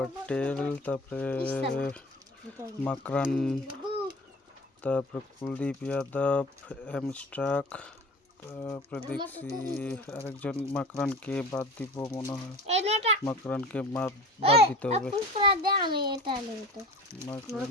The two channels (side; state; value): both; normal; correlation 0.38